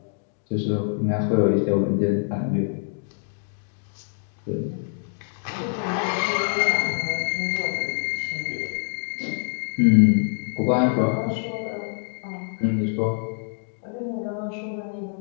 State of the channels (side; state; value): right; silent; 58 dB below the other